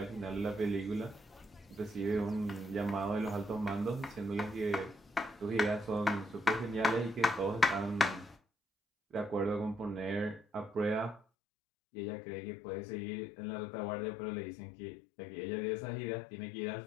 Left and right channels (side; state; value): right; drops out; at 11.2 s